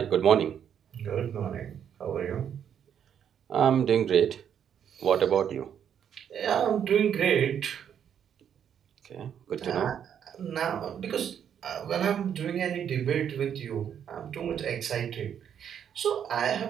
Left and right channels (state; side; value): quieter; left; 8.7 dB